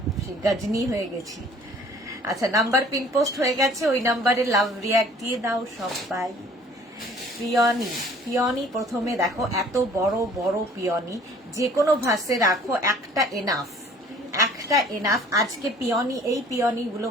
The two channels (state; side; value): normal; both; correlation 0.53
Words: সেই গজনি হয়ে গেছি। আচ্ছা, নাম্বার পিন পোস্ট হয়ে গেছে, ওই নাম্বারে লাভ রিয়াক্ট দিয়ে দাও সবাই। পিওনি প্রথমে দেখো, এত বড় বড় পিওনি, যে কোনো ভাসে রাখো, একটা এনাফ। আজকে এই পিওনি গুলো